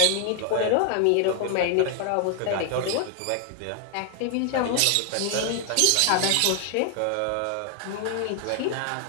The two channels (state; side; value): different; both; correlation 0.00